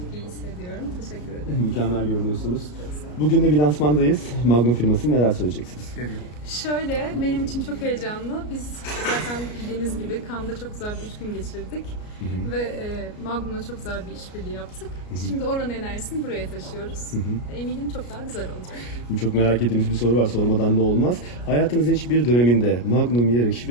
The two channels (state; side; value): late; right; 33 ms